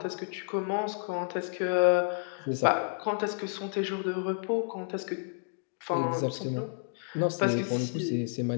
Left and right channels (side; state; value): right; silent; digital silence